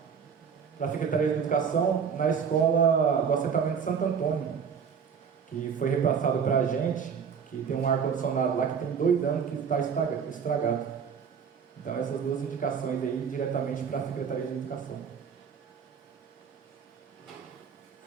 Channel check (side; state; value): left; quieter; 6.9 dB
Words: a Secretaria de Educação na escola do assentamento Santo Antônio, que foi repassado para a gente, que tem um ar-condicionado lá que tem 2 anos que está estragado. Então essas duas indicações aí diretamente para a Secretaria de Educação.